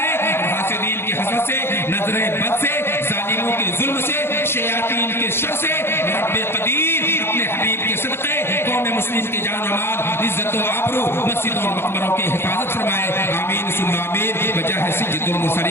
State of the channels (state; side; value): late; right; 0.11 ms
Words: اور حاسدین کی حسد سے، نظر بد سے، ظالموں کے ظلم سے، شیاطین کے شر سے رب قدیر اپنے حبیب کے صدقے قوم مسلم کی جان و مال، عزت و آبرو، مسجدوں اور مقبروں کی حفاظت فرمائے، آمین ثم آمین۔ بجاہ سید